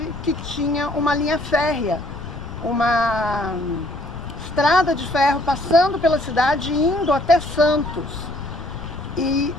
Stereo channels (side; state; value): left; noise; rumble, 12 dB below the sound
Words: que tinha uma linha férrea, uma estrada de ferro passando pela cidade e indo até Santos. E